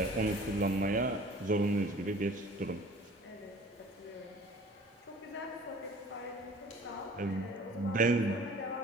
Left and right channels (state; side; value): normal; both; correlation 0.48